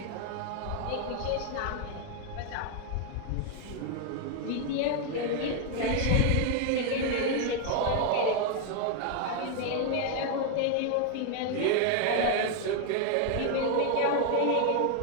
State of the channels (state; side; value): different; both; correlation 0.00